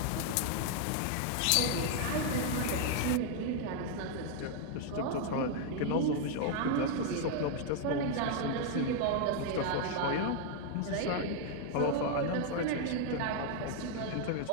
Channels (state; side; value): different; both; correlation 0.00